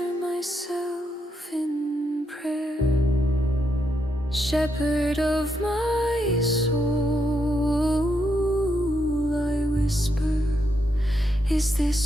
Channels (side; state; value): both; normal; correlation 0.80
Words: myself in prayer. Shepherd of my soul, I whisper, is